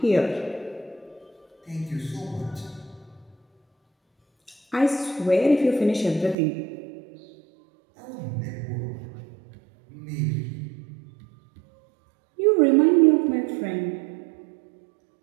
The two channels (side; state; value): left; drops out; at 6.4 s